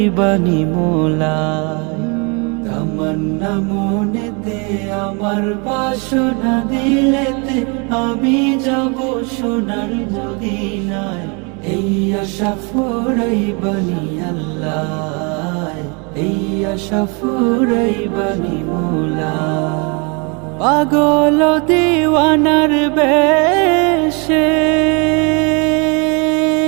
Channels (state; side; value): quieter; left; 32.7 dB